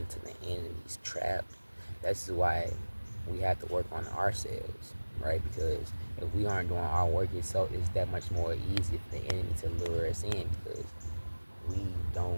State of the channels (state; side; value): inverted; both; correlation -1.00